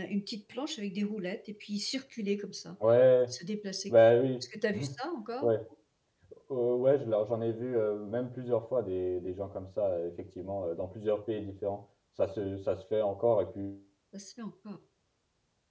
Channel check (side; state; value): both; identical; correlation 1.00